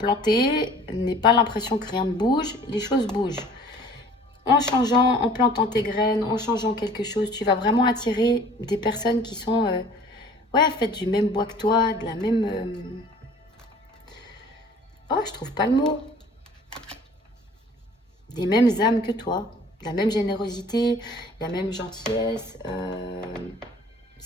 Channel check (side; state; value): both; normal; correlation 0.50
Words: n'aie pas l'impression que rien ne bouge, les choses bougent. En changeant, en plantant tes graines, en changeant quelque chose, tu vas vraiment attirer des personnes qui sont, ouais, faites du même bois que toi, de la même... Oh, je trouve pas le mot. Des mêmes âmes que toi, la même générosité, la même gentillesse.